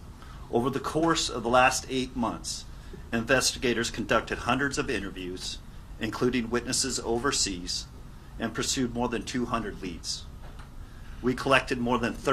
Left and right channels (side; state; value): both; identical; correlation 1.00